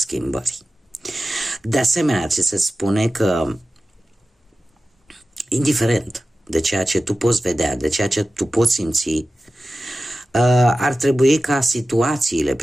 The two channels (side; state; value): both; normal; correlation 0.94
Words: De asemenea, ți se spune că, indiferent de ceea ce tu poți vedea, de ceea ce tu poți simți, ar trebui ca situațiile